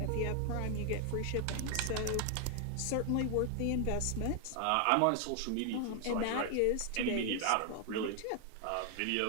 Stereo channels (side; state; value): both; different; correlation 0.00